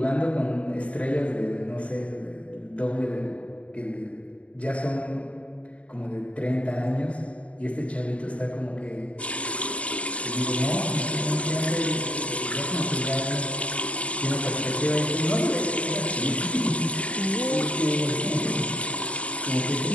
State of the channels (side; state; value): right; late; 0.064 ms